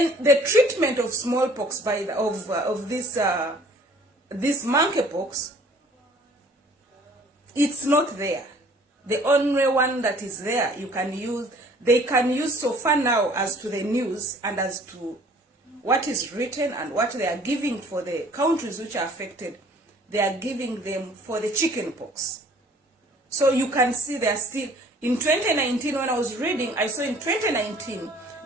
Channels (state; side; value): normal; both; correlation 0.54